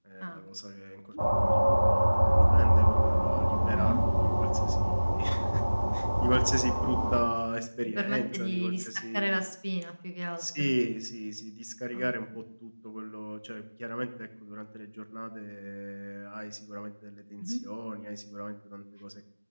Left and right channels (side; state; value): both; inverted; correlation -1.00